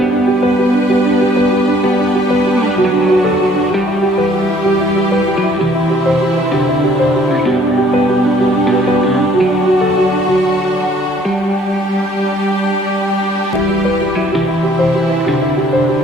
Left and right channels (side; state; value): both; normal; correlation 0.59